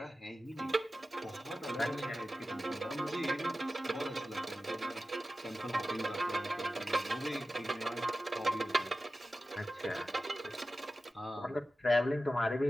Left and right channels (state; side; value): normal; both; correlation 0.94